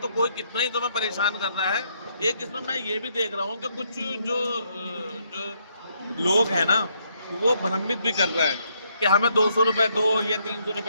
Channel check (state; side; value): inverted; both; correlation -0.73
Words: कोई कितना ही तुम्हें परेशान कर रहा है। एक इसमें मैं ये भी देख रहा हूँ कि कुछ जो लोग हैं ना, वो भ्रमित भी कर रहे हैं कि हमें 200 रुपये दो या 300